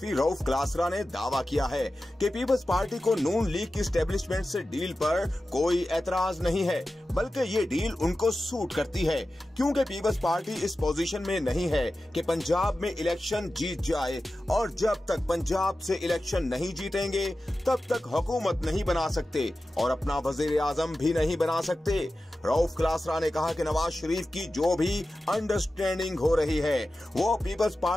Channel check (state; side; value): normal; both; correlation 0.94